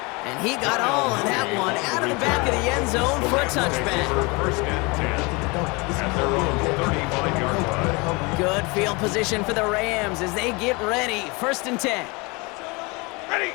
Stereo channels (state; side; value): quieter; right; 27.2 dB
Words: And he got all of that one out of the back of the end zone for a touchback. First and 10 at their own 35-yard line. Good field position for the Rams as they get ready. 1st and 10. Ready!